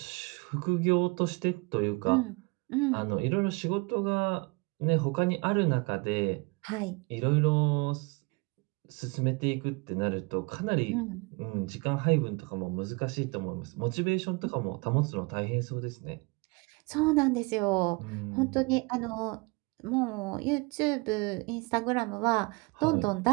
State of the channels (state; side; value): quieter; left; 27.6 dB